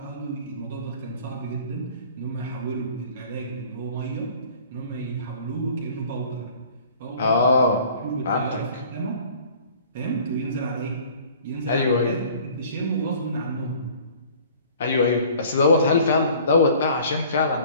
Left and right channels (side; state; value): both; inverted; correlation -0.50